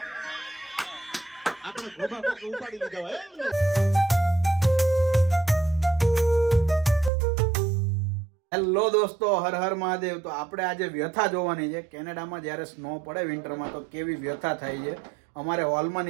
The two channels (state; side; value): drops out; left; at 7.1 s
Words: આપણે ગોભા કોક ઉપાડી લીધા હોય. હેલો દોસ્તો, હર હર મહાદેવ. તો આપણે આજે વ્યથા જોવાની છે. કેનેડામાં જ્યારે સ્નો પડે વિન્ટરમાં તો કેવી વ્યથા થાય છે. અમારે હોલમાં